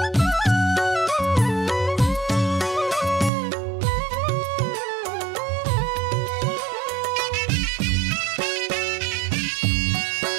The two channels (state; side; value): drops out; left; at 3.3 s